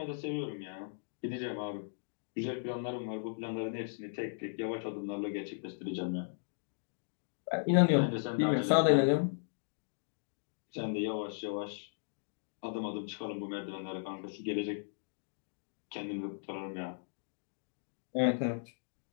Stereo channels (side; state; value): right; silent; digital silence